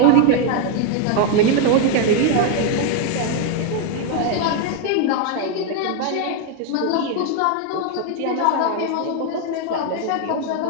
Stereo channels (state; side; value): different; both; correlation 0.01